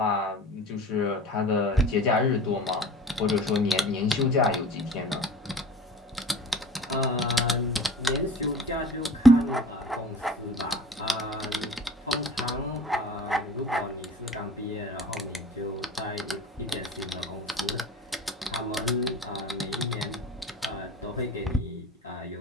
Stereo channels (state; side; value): normal; both; correlation 0.41